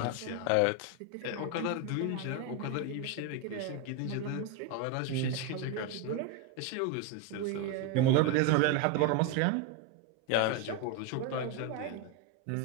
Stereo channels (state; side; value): different; both; correlation 0.02